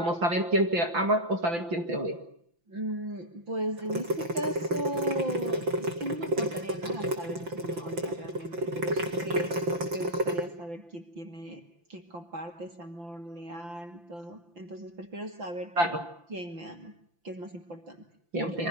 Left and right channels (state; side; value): late; left; 5.9 ms